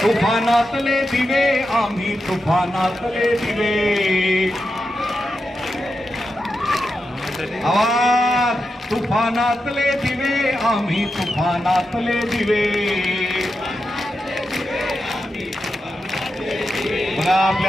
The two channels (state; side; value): normal; both; correlation 0.88